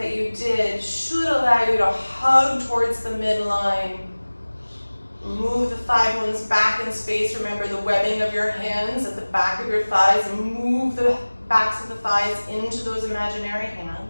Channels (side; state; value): both; inverted; correlation -1.00